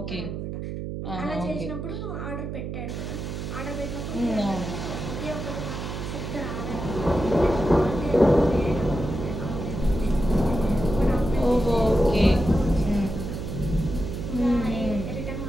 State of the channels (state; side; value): noise; right; hum, 6 dB below the sound